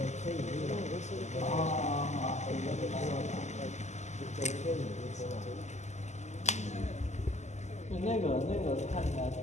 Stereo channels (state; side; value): late; right; 0.33 ms